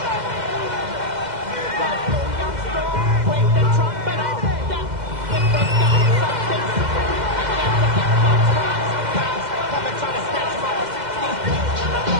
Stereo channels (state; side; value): late; left; 2.1 ms